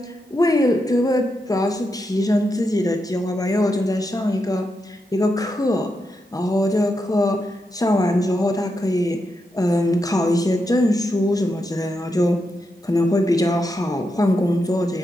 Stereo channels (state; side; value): normal; both; correlation 0.85